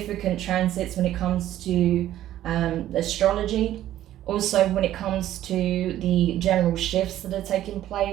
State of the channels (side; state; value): left; quieter; 12.9 dB